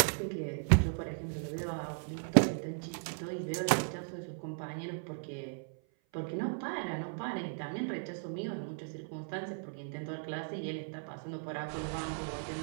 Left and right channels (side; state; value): left; silent; 54 dB below the other